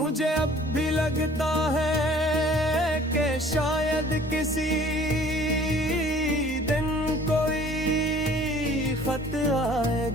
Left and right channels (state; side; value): normal; both; correlation 0.52